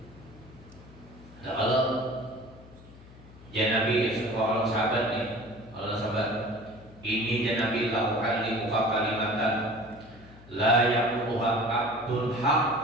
Nah kalau ya Nabi seorang sahabat nih, Allah sahabat ini ya Nabi lakukan di muka kalimatan la yaquha abdul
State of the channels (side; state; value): left; noise; hum, 21 dB below the sound